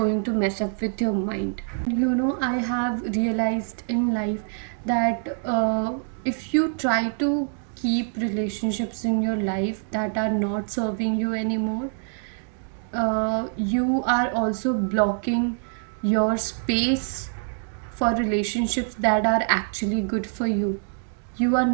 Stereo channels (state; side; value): silent; left; 58 dB below the other